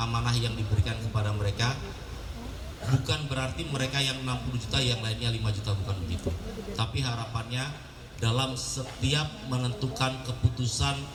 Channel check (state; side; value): identical; both; correlation 1.00